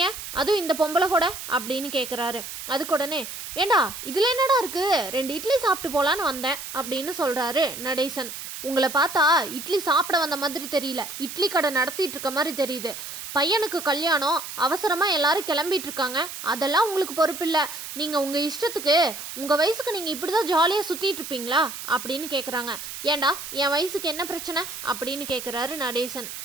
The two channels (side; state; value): right; noise; hiss, 9 dB below the sound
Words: அதுவும் இந்த பொம்பளை கூட அப்படின்னு கேட்குறாரு. அதுக்கு உடனே ஏண்டா இதில் என்னடா இருக்குது, 2 இட்லி சாப்பிட்டு போகலான்னு வந்தேன் அப்படின்னு சொல்கிறாரு நடேசன். உங்களை பார்த்தா இட்லி சாப்பிட வந்த மாதிரி தெரியல, இட்லி கடை நடத்திட்டு இருக்க மாதிரி தெரியுது. பையனுக்கு கல்யாணம், அவசரமாக எல்லாரும் கிளம்பிட்டு இருக்காங்க, அதெல்லாம் உங்களுக்கு பொறுப்பில்லை. நீங்கள் உங்கள் இஷ்டத்துக்கு உங்கள் வயசுக்கு நீங்கள் இப்படி தான் ஜாலியாக சுற்றிட்டு இருப்பீங்களா அப்படின்னு கேட்குறாங்க. ஏண்டா என் வயசுக்கு என்ன பிரச்சனை அப்படின்னு கேட்குறாரு நடேசன்.